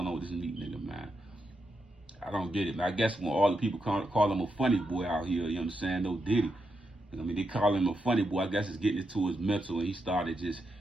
on with this Meek nigga, man. I don't get it. I guess when all the people call him a funny boy out here, you know what I'm saying? No Diddy. I mean, they call him a funny boy. I guess it's getting into his mental, and he started just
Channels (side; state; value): both; normal; correlation 0.84